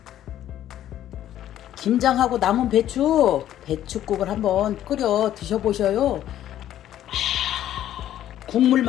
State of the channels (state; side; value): quieter; right; 11.9 dB